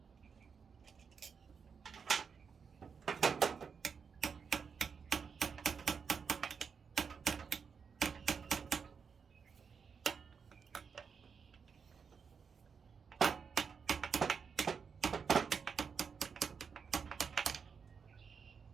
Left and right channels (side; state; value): left; quieter; 6.0 dB